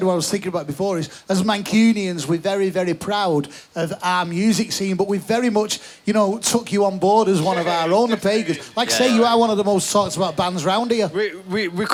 what I was thinking about before, is as Mancunians, we're very, very proud of our music scene, but we've very much, you know, took you on board as one of our own, the Pagans. Like say, you are one of the most talked about bands round here. We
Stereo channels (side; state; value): both; identical; correlation 1.00